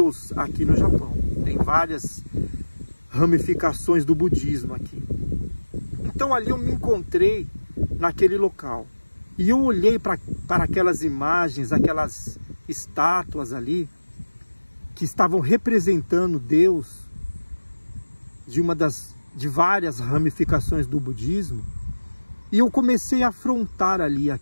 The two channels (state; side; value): inverted; both; correlation -1.00